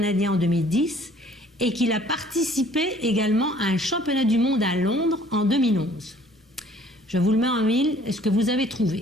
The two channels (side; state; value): both; normal; correlation 0.56